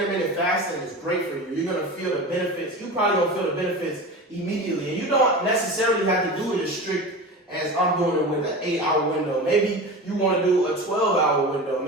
fasting is great for you. You're gonna feel the benefits. You probably gonna feel the benefits immediately. And you don't necessarily have to do it as strict as I'm doing it with an 8-hour window.Maybe you want to do a 12-hour window.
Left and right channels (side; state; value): both; normal; correlation 0.30